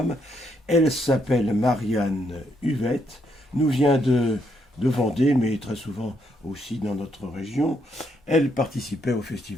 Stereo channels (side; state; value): both; normal; correlation 0.75